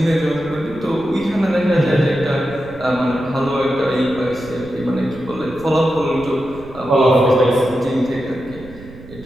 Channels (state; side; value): noise; right; rumble, 18 dB below the sound